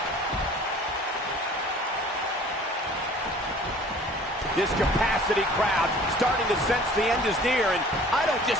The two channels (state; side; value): normal; both; correlation 0.49